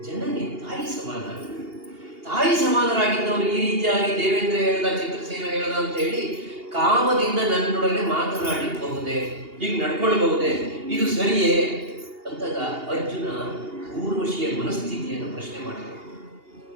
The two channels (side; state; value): left; late; 2.8 ms